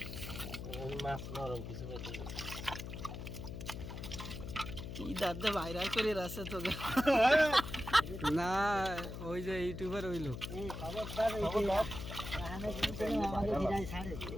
মাছ নরম কিছু বেঁধে কি দাদা ভাইরাল করে রাখছে তো না ওই যে ইউটিউবার ওই লোক খবরদার রাহানে কিন্তু আমাকে ভিড়াই ছাড়ে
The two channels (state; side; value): noise; left; hum, 7 dB below the sound